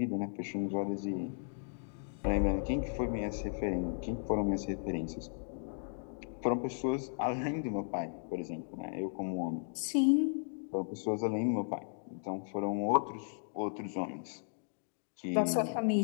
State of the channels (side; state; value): right; silent; digital silence